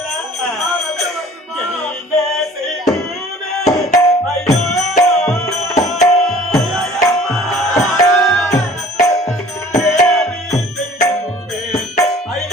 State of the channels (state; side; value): normal; both; correlation 0.50